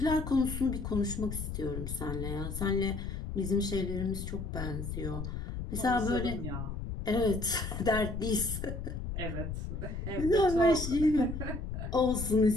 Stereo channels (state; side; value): noise; left; rumble, 5 dB below the sound